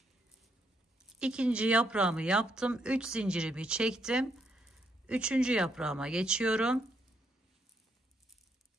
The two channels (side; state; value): both; normal; correlation 0.75